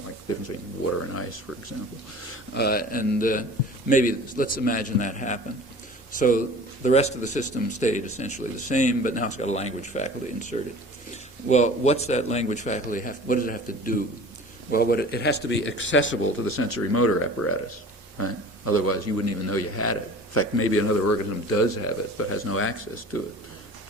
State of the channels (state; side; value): normal; both; correlation 0.42